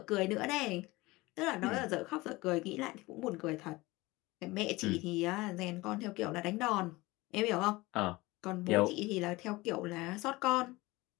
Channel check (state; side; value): quieter; right; 21.2 dB